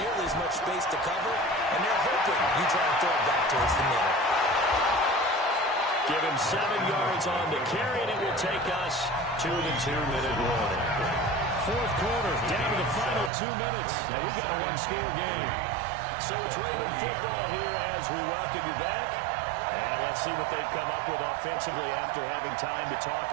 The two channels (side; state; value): left; drops out; at 13.3 s